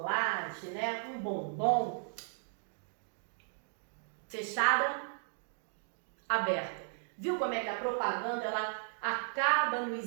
né? Um bombom, fechada, aberta. Viu como é que a propaganda, ela acaba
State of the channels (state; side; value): silent; left; digital silence